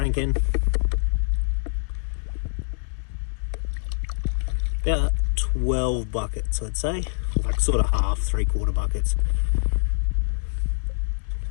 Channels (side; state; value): right; silent; digital silence